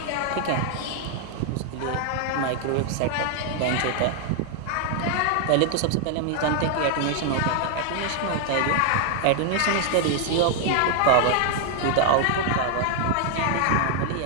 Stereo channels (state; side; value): different; both; correlation 0.00